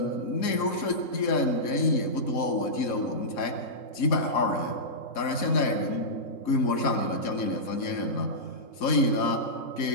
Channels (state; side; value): late; right; 4.1 ms